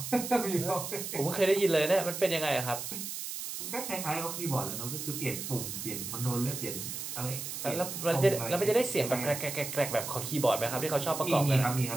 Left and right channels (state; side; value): noise; right; hiss, 6 dB below the sound